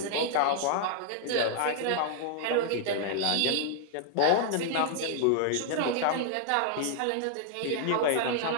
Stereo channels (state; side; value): different; both; correlation -0.01